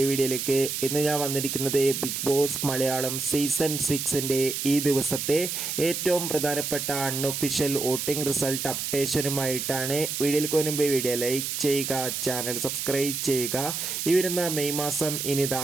വീഡിയോയിലേക്ക്. ഇന്ന് ഞാൻ വന്നിരിക്കുന്നത് ബിഗ് ബോസ് മലയാളം സീസൺ 6ൻ്റെ ഈ ദിവസത്തെ ഏറ്റവും പ്രധാനപ്പെട്ട അൺഒഫീഷ്യൽ വോട്ടിംഗ് റിസൾട്ട് അപ്ഡേഷനുമായിട്ടാണ്. വീഡിയോയിലേക്ക് മുൻപ് വീഡിയോ ലൈക്ക് ചെയ്യുക, ചാനൽ സബ്സ്ക്രൈബ് ചെയ്യുക. ഈ വരുന്ന മെയ് മാസം ഇനി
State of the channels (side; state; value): right; noise; hiss, 3 dB below the sound